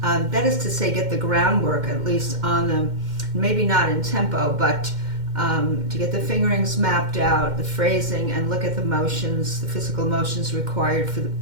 That is to say, get the groundwork at least on them, maybe not in tempo, but to get the fingerings mapped out, the phrasing, and look at the motions, the physical motions required for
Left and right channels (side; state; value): left; late; 2.1 ms